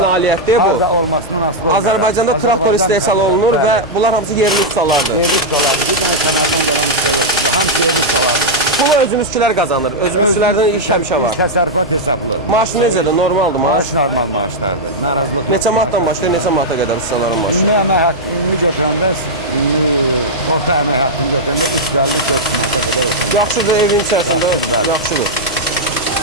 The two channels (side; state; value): left; noise; hum, 24 dB below the sound